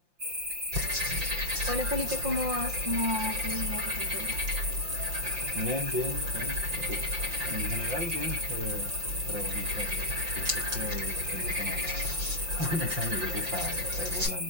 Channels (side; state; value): left; late; 5.7 ms